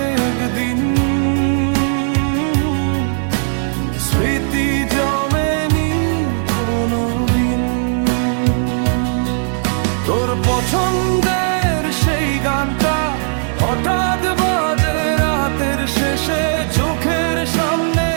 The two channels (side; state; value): left; silent; digital silence